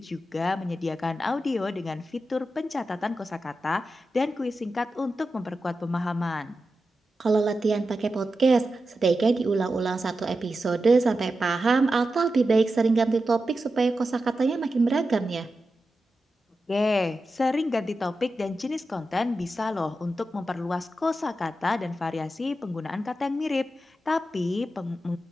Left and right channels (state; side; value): normal; both; correlation 0.91